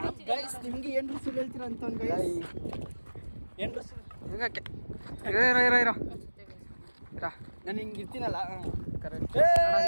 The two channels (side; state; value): both; inverted; correlation -1.00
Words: ಗೈಸ್. ನಿಮ್ಗೆ ಏನ್ರು ಸುಳ್ಳು ಹೇಳ್ತೀರ ಅಂತ ನಾನು ಹಿಂಗೆ ಇರ್ತೀನಲ್ಲ ಕರೆಕ್ಟ್.